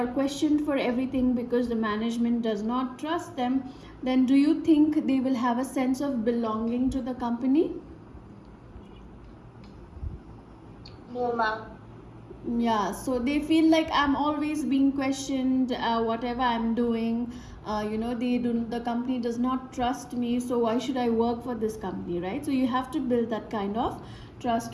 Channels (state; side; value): identical; both; correlation 1.00